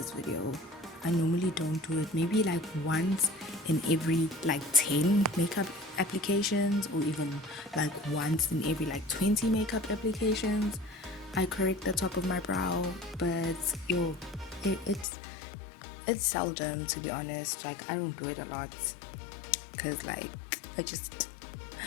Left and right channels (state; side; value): drops out; right; at 15.1 s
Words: video. I normally don't do it, maybe like once in every like 10 makeup applications, or even like once in every like 20 makeup applications I correct the top of my brow. But it's seldom, to be honest. Like, I don't do it a lot because like it's